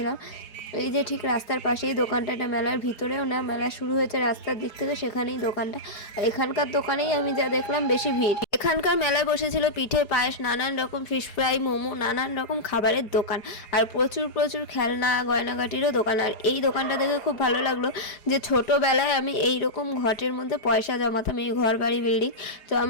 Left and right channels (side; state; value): right; late; 4.7 ms